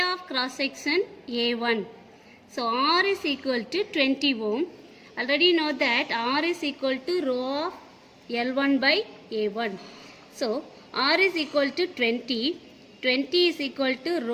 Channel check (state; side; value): identical; both; correlation 1.00